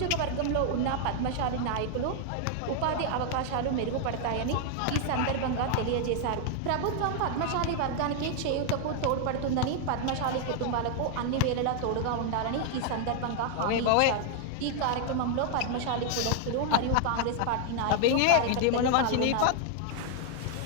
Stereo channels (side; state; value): both; different; correlation 0.00